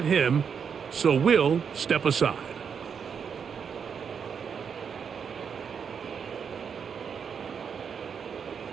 him, so we'll step aside.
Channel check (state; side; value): quieter; left; 6.8 dB